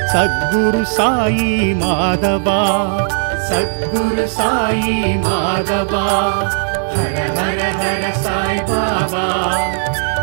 சத்குரு சாயி மாதவா, சத்குரு சாயி மாதவா. ஹர ஹர ஹர சாய் பாபா,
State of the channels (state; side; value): silent; left; digital silence